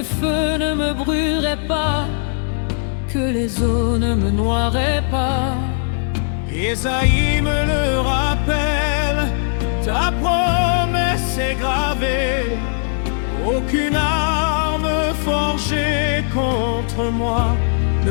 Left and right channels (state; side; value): silent; right; 59 dB below the other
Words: feu ne me brûlerait pas, que les eaux ne me noieraient pas. Ésaïe me le rappelle, ta promesse est gravée. Aucune arme forgée contre moi ne